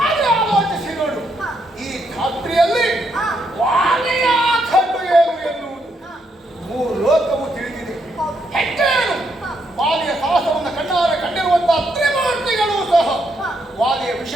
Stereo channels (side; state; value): both; normal; correlation 0.76